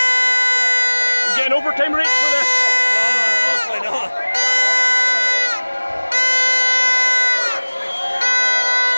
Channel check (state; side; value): inverted; both; correlation -1.00